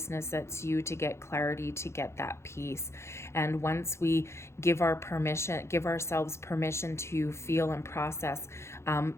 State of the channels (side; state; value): right; late; 0.13 ms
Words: that's you, to get clarity, to get that peace. And once we give ourselves permission to feel and process